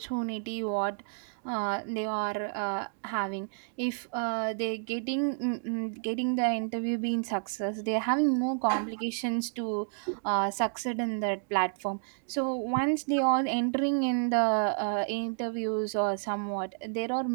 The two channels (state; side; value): silent; left; digital silence